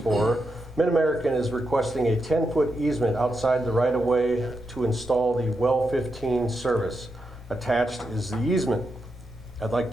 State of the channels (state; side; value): normal; both; correlation 0.85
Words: MidAmerican is requesting a 10-foot easement outside the right-of-way to install the well 15 service. Attached is the easement. I'd like